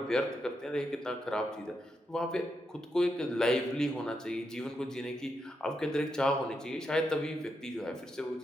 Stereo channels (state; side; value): normal; both; correlation 0.83